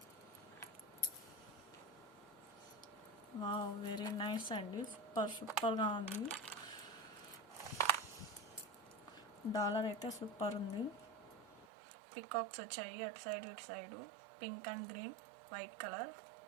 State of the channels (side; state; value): left; drops out; at 11.7 s